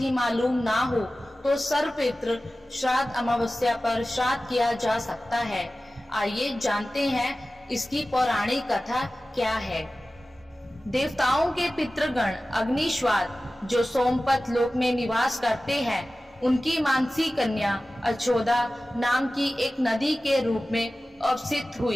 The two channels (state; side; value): normal; both; correlation 0.96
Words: मालूम ना हो तो सर्व पितृ श्राद्ध अमावस्या पर श्राद्ध किया जा सकता है। आइए जानते हैं इसकी पौराणिक कथा क्या है। देवताओं के पितृगण अग्निश्वाद जो सोमपत लोक में निवास करते हैं, उनकी मानसी कन्या अछोदा नाम की एक नदी के रूप में अवसित